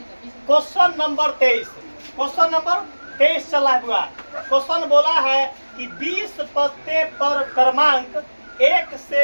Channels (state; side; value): inverted; both; correlation -1.00